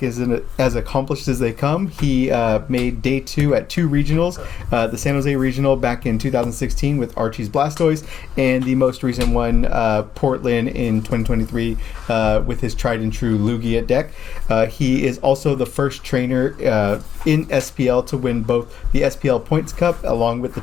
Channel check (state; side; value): quieter; right; 8.7 dB